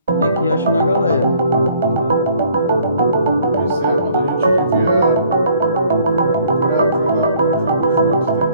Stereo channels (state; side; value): inverted; both; correlation -0.60